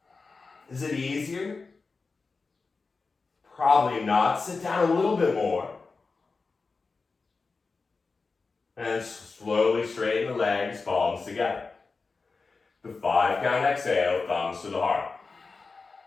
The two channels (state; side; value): quieter; right; 4.3 dB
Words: Is it easier? Probably not. Sit down a little bit more. And slowly straighten the legs, palms together. The 5 count exhale, thumbs to the heart.